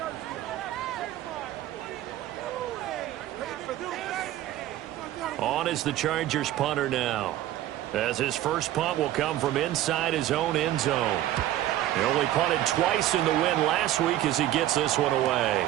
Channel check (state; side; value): quieter; left; 13.6 dB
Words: On is the Chargers punter now, as his first punt will come from inside his own end zone. He only punted twice in the win last week as he gets this one away.